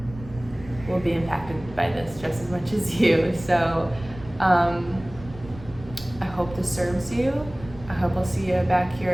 will be impacted by this just as much as you. So I hope this serves you. I hope I'll see you back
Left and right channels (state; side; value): noise; right; rumble, 16 dB below the sound